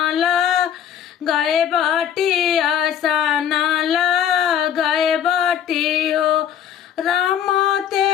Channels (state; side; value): quieter; right; 9.2 dB